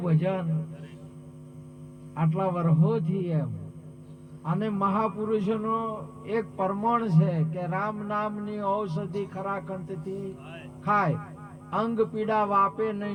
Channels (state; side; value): identical; both; correlation 1.00